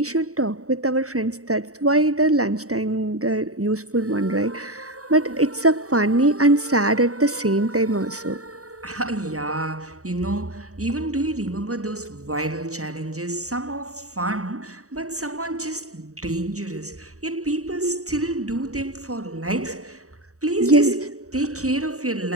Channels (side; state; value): left; late; 0.65 ms